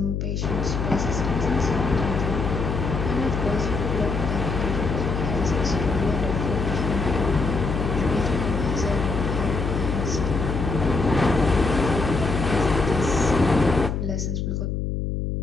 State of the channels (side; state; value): left; noise; hum, 2 dB below the sound